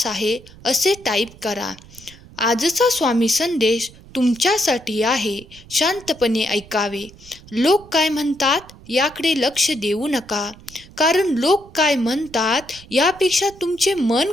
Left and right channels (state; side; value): noise; right; rumble, 21 dB below the sound